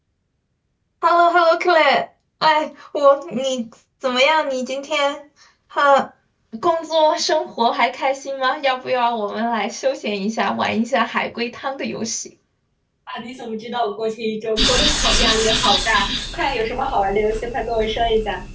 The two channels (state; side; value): identical; both; correlation 1.00